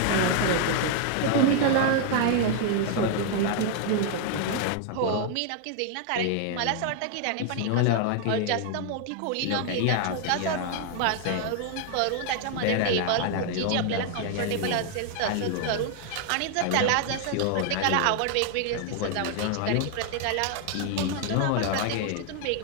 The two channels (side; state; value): both; different; correlation 0.00